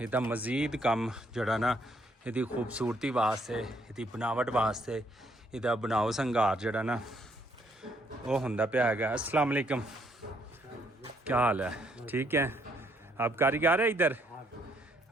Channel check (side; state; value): both; normal; correlation 0.70